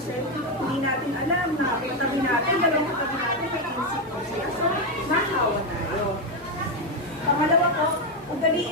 hindi natin alam na katabi natin, dalawang katabi natin may insecurity. So, nahawa tayo. Pangalawa po,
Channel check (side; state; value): both; normal; correlation 0.06